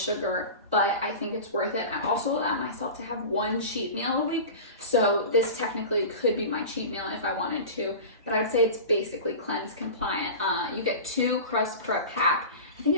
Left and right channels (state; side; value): inverted; both; correlation -0.32